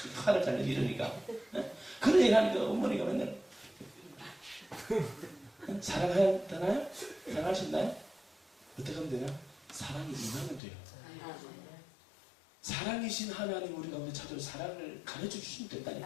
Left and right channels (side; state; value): right; drops out; at 10.6 s